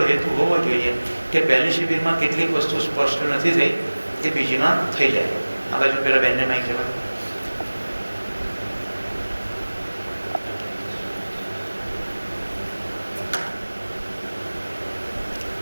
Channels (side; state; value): both; inverted; correlation -1.00